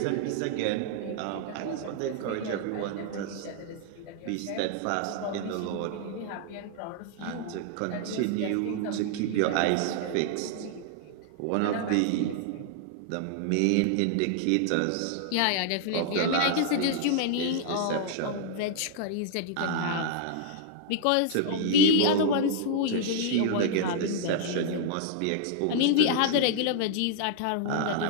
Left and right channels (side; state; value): both; different; correlation 0.00